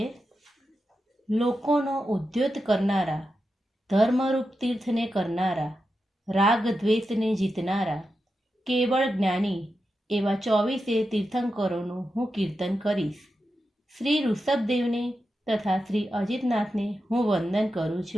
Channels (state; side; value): normal; both; correlation 0.89